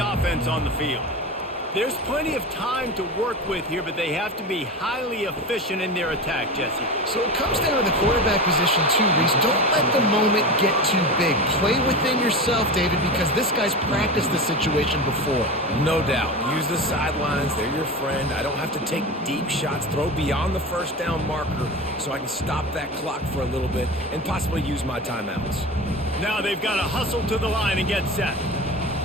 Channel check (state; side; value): normal; both; correlation 0.27